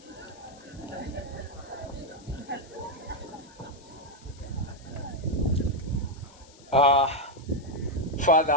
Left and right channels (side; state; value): left; noise; hiss, 24 dB below the sound